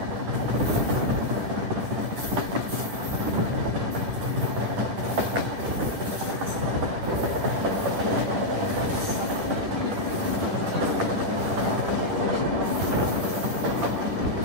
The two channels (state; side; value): late; left; 10 ms